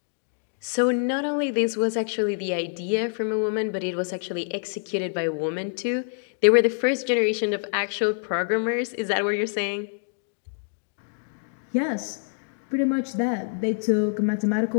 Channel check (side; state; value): right; silent; digital silence